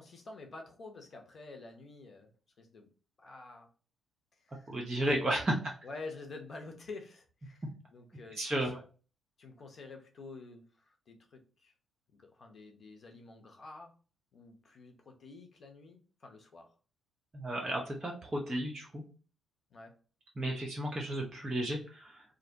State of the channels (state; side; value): normal; both; correlation 0.81